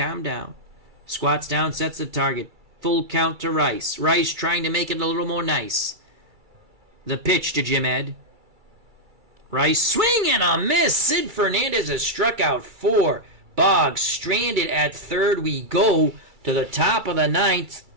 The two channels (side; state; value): left; late; 2.3 ms